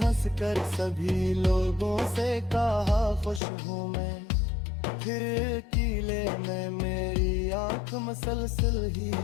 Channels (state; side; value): drops out; right; at 3.4 s